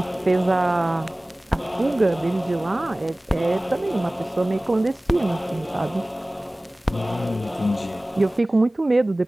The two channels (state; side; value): normal; both; correlation 0.98